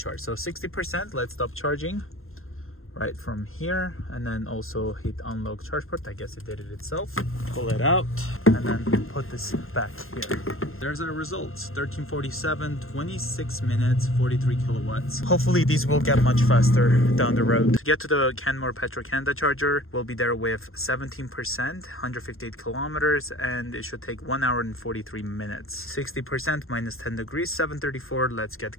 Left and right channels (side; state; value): right; late; 0.61 ms